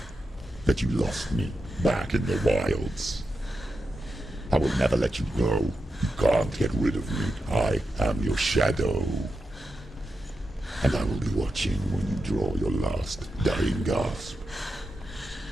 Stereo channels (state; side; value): normal; both; correlation 0.88